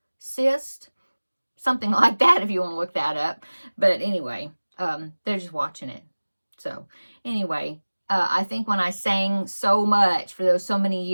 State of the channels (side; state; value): both; inverted; correlation -1.00